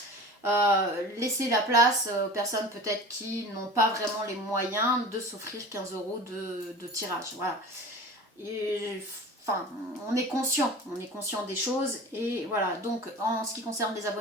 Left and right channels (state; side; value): normal; both; correlation 0.37